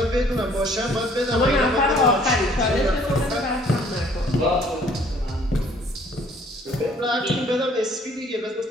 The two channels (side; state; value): both; normal; correlation 0.59